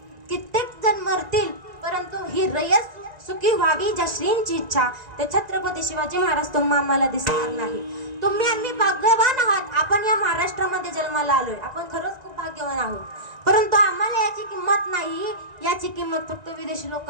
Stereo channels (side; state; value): left; late; 1.9 ms